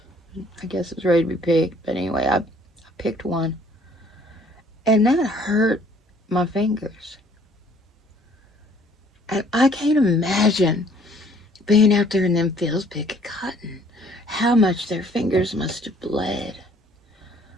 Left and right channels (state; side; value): normal; both; correlation 0.59